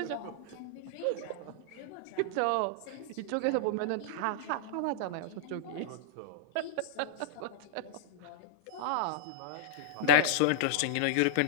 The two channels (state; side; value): different; both; correlation -0.02